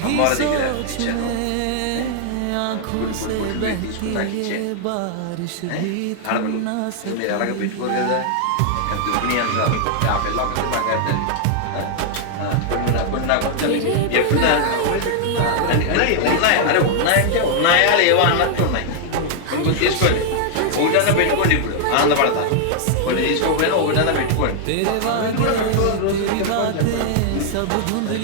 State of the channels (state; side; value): different; both; correlation -0.01